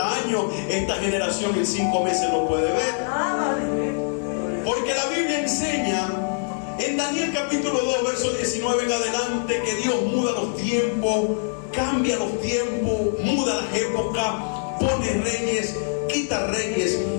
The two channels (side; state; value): right; silent; digital silence